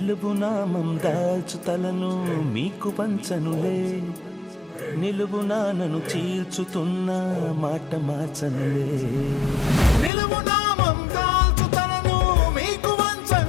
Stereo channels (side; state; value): right; drops out; at 10.1 s